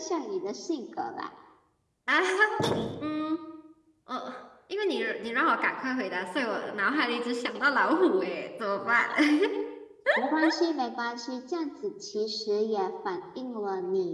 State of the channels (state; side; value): identical; both; correlation 1.00